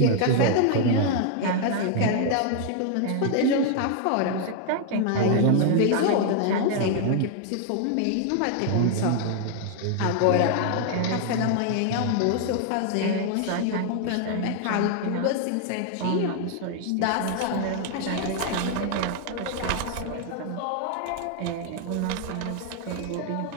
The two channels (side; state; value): both; different; correlation 0.00